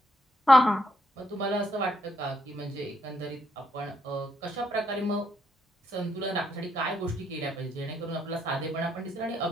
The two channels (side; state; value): both; normal; correlation 0.75